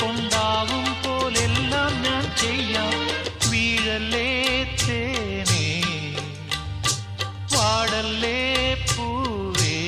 പോലെല്ലാം ഞാൻ ചെയ്യാം വീഴല്ലേ തേനേ വാടല്ലേ പൂവേ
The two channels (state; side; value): identical; both; correlation 1.00